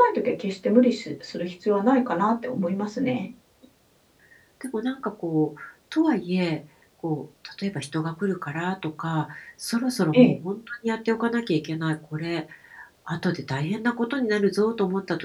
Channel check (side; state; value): both; identical; correlation 1.00